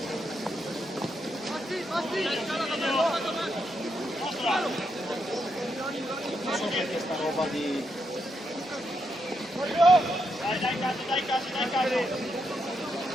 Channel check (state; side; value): normal; both; correlation 0.81